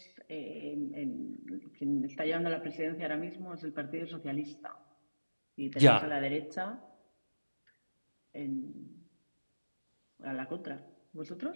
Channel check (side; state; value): both; inverted; correlation -1.00